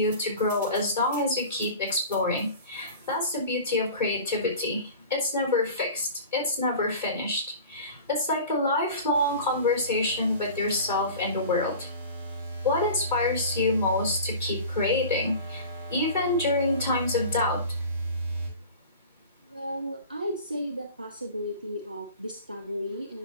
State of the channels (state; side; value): inverted; both; correlation -0.38